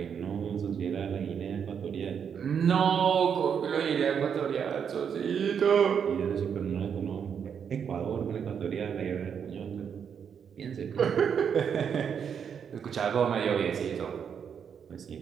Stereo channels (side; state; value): left; quieter; 7.4 dB